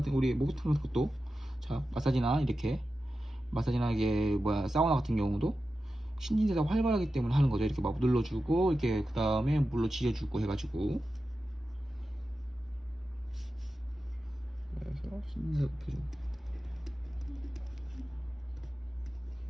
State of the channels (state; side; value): normal; both; correlation 0.92